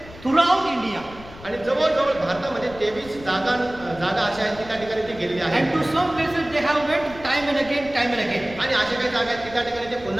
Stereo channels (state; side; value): noise; left; rumble, 18 dB below the sound